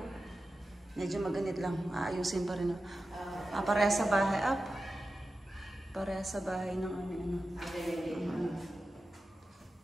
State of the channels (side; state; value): both; normal; correlation 0.93